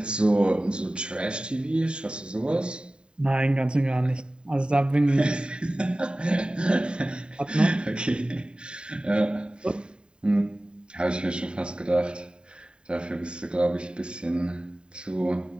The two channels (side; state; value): left; late; 0.050 ms